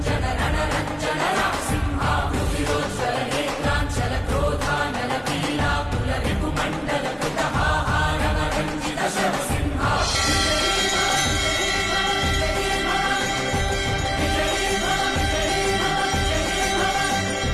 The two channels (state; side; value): identical; both; correlation 1.00